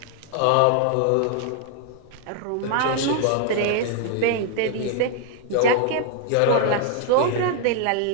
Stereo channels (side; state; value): both; different; correlation 0.00